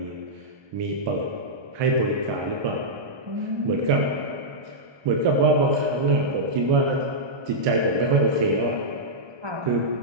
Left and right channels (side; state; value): left; late; 1.2 ms